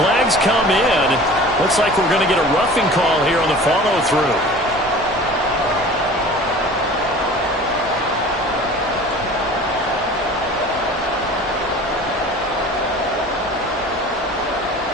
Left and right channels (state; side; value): normal; both; correlation 0.42